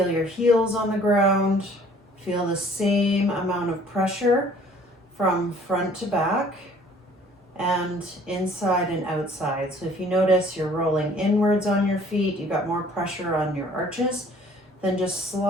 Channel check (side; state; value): both; normal; correlation 0.55